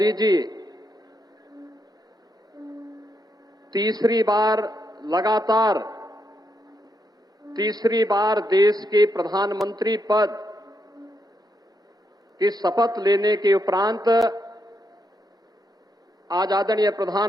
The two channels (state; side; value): normal; both; correlation 0.80